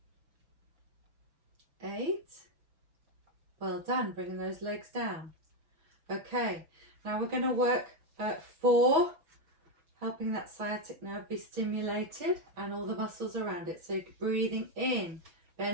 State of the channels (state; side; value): late; left; 6.0 ms